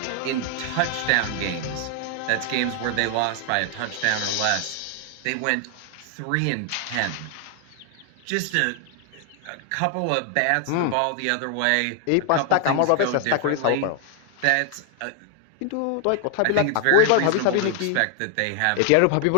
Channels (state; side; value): different; both; correlation 0.00